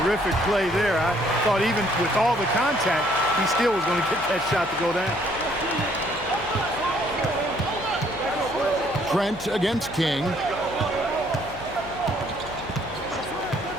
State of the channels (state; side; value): noise; left; hum, 17 dB below the sound